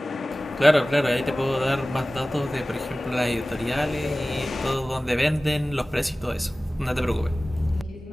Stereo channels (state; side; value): normal; both; correlation 0.97